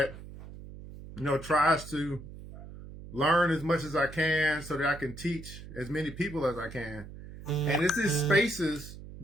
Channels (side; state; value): right; noise; hum, 14 dB below the sound